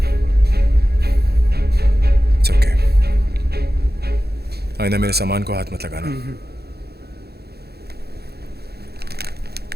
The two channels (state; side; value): late; left; 0.47 ms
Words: It's okay. आइंदा मेरे सामान को हाथ मत लगाना।